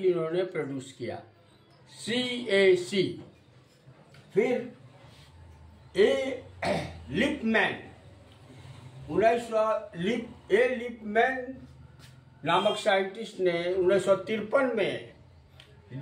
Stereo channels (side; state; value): both; identical; correlation 1.00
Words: इन्होंने प्रोड्यूस किया, CAC। फिर लिपमैन लिपमैन नामक साइंटिस्ट ने 1953 में